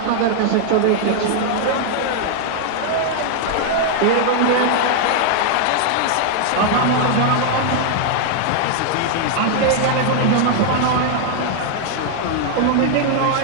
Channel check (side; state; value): both; different; correlation 0.00